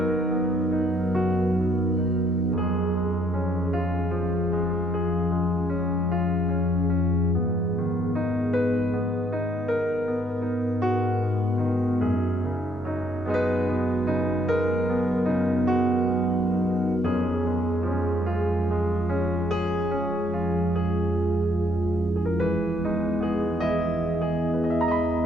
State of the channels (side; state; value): both; normal; correlation 0.70